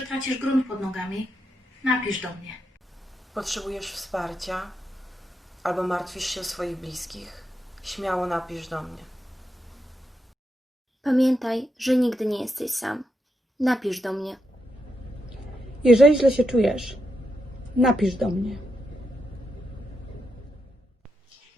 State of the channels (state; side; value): normal; both; correlation 0.83